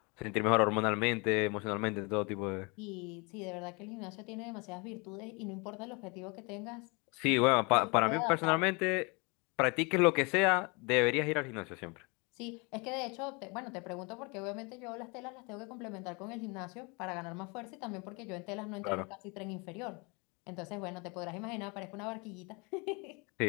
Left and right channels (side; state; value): right; quieter; 29.8 dB